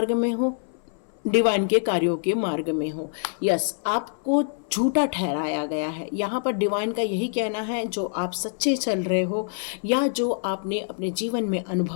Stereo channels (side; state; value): right; silent; 59 dB below the other